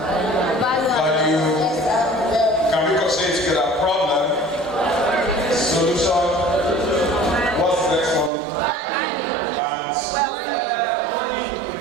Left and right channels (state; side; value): drops out; left; at 8.3 s